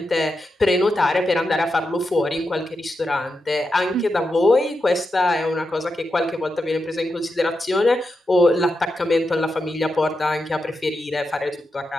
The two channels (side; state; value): both; normal; correlation 0.87